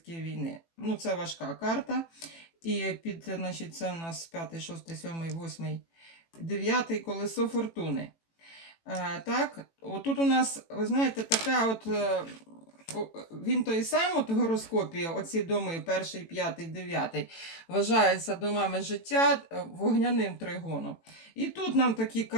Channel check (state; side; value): late; right; 18 ms